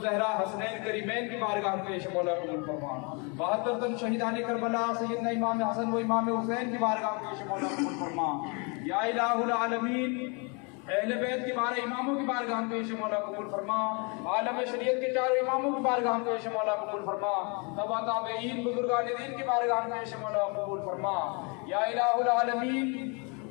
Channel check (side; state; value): right; quieter; 32.9 dB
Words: حسنین کریمین کی بارگاہ میں پیش مولا قبول فرما 72 تن شہیدان کربلا سیدنا امام حسن و امام حسین کی بارگاہ میں پیش مولا قبول فرما یا الہ العالمین اہل بیت کی بارہ اماموں کی بارگاہ میں پیش مولا قبول فرما عالم شریعت کے چاروں اماموں کی بارگاہ میں پیش مولا قبول فرما تبا تابعین بزرگان دین کی بارگاہ میں پیش مولا قبول فرما یا الہ العالمین